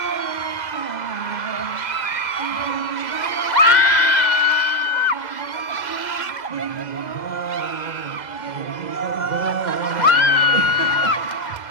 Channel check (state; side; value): late; right; 2.0 ms